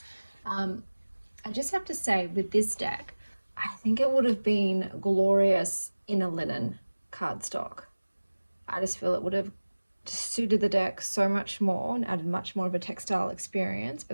I just have to say, with this deck, I think it would have been glorious in a linen cardstock. I just feel it would have suited the deck so much more and added much more of a textile experience, but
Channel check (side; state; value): both; inverted; correlation -1.00